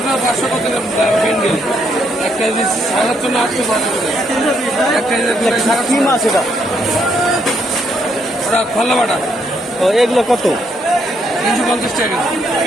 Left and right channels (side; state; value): both; normal; correlation 0.74